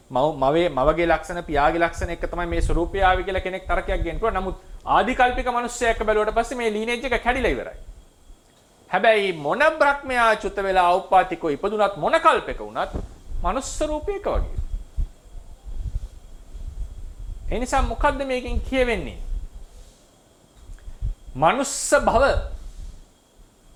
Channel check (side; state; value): both; identical; correlation 1.00